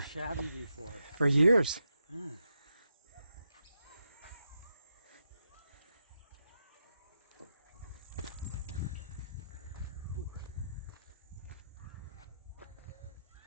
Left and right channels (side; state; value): both; inverted; correlation -0.85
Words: Shabby before. For years. Hmm.